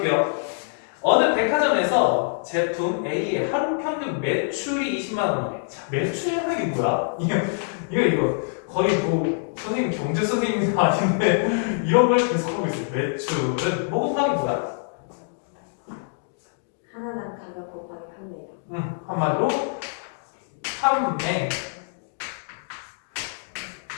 어느 백화점에서 제품 A의 하루 평균 매출이 20만 원이래. 자, 매출이라는 게 뭐야? 이거 거의 뭐 선생님 경제 선생님이 아닌데 이런 걸 계속하고 있어요. 매출은 뭐 곱하기 뭐야? 하나당 가격 곱하기 판매량. 한마디로 판매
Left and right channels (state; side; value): silent; right; digital silence